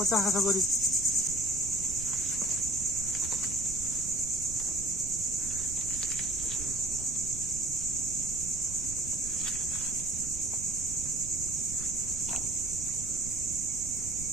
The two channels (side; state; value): right; noise; rumble, 10 dB below the sound